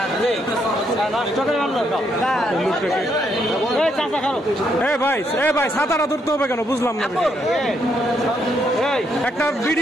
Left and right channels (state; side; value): normal; both; correlation 0.75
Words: ভাই সাঁতারা ধরতে হবে কেন বুঝলাম না। একটা